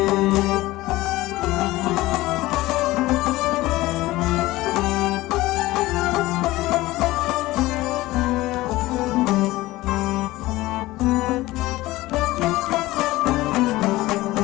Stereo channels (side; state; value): right; quieter; 18.3 dB